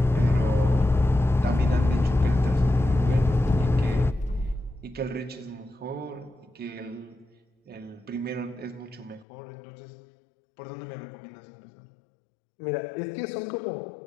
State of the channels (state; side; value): drops out; right; at 9.2 s